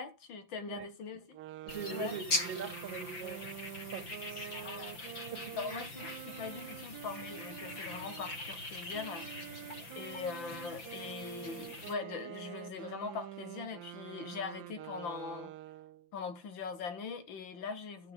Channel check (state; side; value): late; right; 5.9 ms